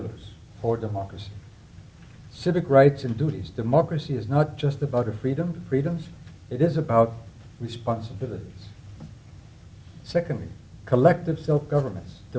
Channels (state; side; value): identical; both; correlation 1.00